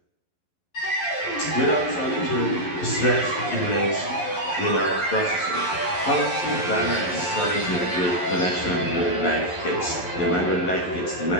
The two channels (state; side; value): late; right; 11 ms